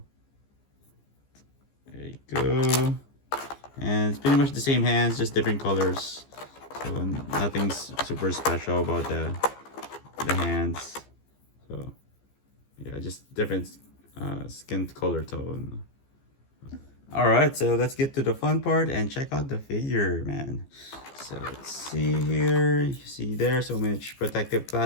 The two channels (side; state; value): right; late; 15 ms